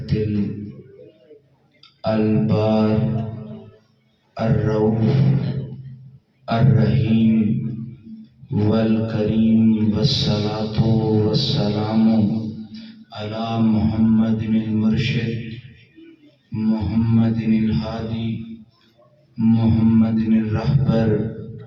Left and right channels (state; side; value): identical; both; correlation 1.00